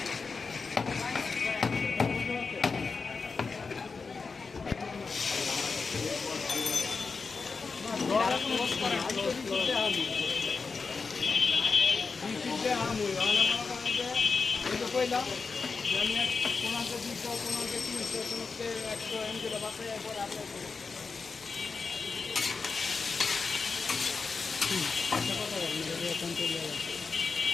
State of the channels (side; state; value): right; quieter; 4.7 dB